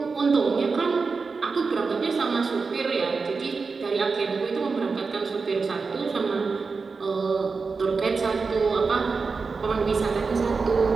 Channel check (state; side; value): quieter; left; 4.6 dB